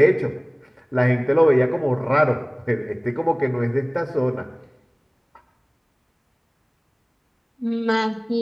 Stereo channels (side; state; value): both; identical; correlation 1.00